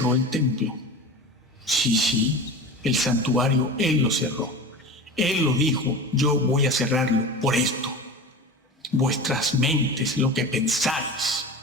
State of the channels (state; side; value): normal; both; correlation 0.31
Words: el templo. Sí, el santuario, Él lo cerró. Él lo dijo, yo voy a cerrarlo por esto. Vuestras mentes, lo que pensáis.